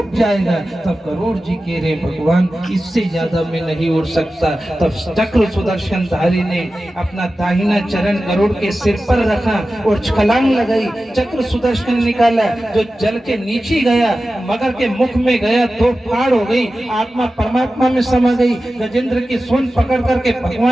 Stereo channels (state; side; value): normal; both; correlation 0.94